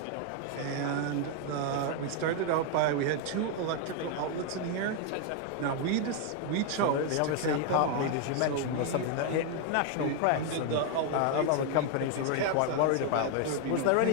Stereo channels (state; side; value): different; both; correlation 0.00